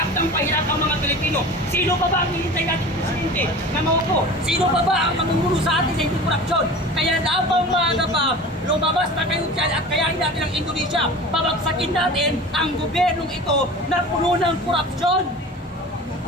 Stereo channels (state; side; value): normal; both; correlation 0.37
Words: ng pahirap ang mga Pilipino. Sino pa ba ang hinintay natin presidente na maupo? Sino pa ba ang mamumuno sa atin sa hindi korupsyon? Kaya dapat maaga pa, lumabas na kayo dyan at kayahin natin ang Indonesia. Pabagsakin natin ang gobyernong ito na puno ng korupsyon.